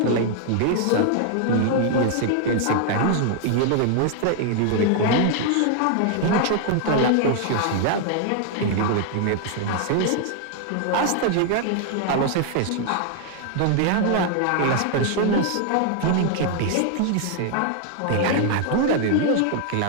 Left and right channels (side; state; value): both; different; correlation 0.00